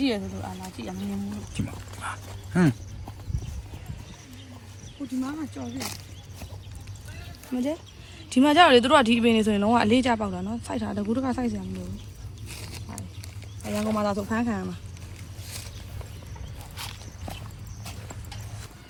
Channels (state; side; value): identical; both; correlation 1.00